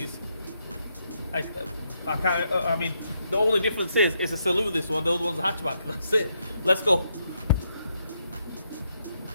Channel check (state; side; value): inverted; both; correlation -0.78